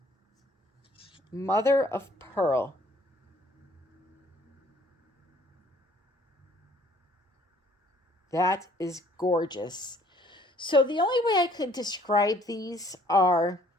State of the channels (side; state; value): both; normal; correlation 0.59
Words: Mother of Pearl. That is gorgeous. So the only way I could describe these